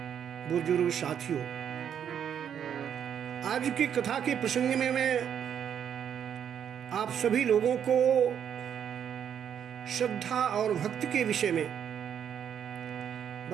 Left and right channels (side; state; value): left; quieter; 8.7 dB